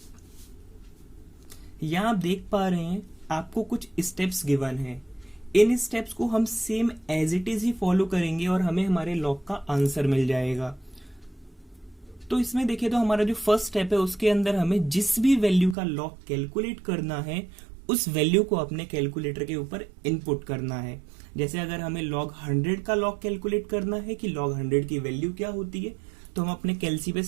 यहां आप देख पा रहे हैं आपको कुछ स्टेप्स गिवन है। इन स्टेप्स को हम सेम एज इट इज ही फॉलो करेंगे और हमें हमारे लॉग का आंसर मिल जाएगा। तो इसमें देखिए, तो हमारा जो फर्स्ट स्टेप है उसके अंदर हमें जिस भी वैल्यू का लॉग कैलकुलेट करना है उस वैल्यू को अपने कैलकुलेटर के ऊपर इनपुट करना है। जैसे अगर हमें लॉग 100 का लॉग कैलकुलेट करना है कि लॉग 100 की वैल्यू क्या होती है, तो हम अपने कैलसी पे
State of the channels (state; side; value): drops out; left; at 15.8 s